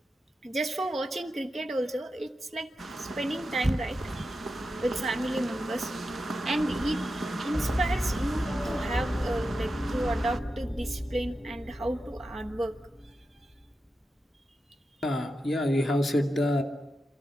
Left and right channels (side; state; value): both; normal; correlation 0.90